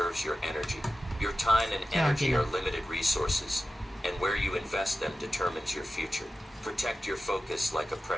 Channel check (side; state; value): both; normal; correlation 0.93